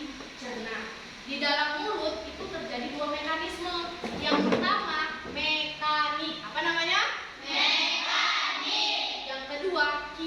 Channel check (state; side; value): identical; both; correlation 1.00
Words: Di dalam mulut itu terjadi dua mekanisme. Yang pertama mekanik, apa namanya? Mekanik. Yang kedua